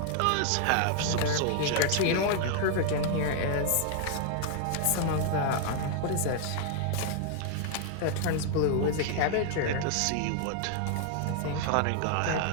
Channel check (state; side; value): different; both; correlation 0.00